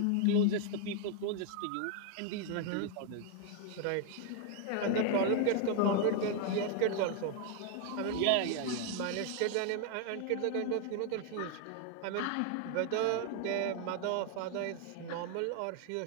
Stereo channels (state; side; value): different; both; correlation 0.00